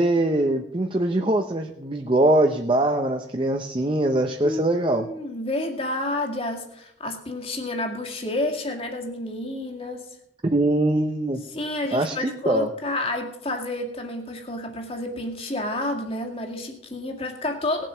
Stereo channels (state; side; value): normal; both; correlation 0.51